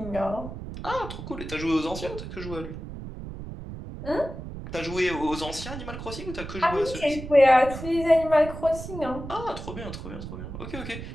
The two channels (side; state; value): right; noise; rumble, 9 dB below the sound